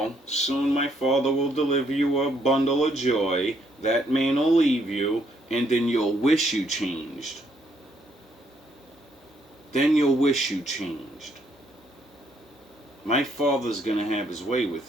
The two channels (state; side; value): normal; both; correlation 0.71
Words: Soon my father will deliver you a bundle of joy. That man will leave you, and then you'll wish you changed. Then you'll wish you changed. My father's gonna have his way